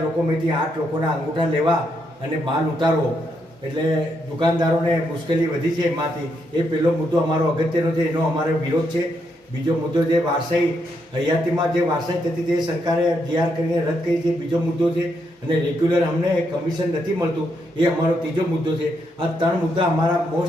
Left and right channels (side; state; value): both; normal; correlation 0.78